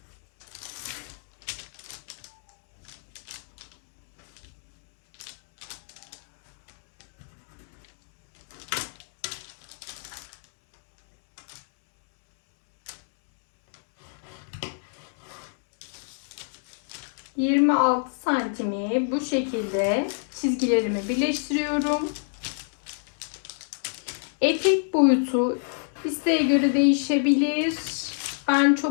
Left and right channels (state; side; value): silent; right; digital silence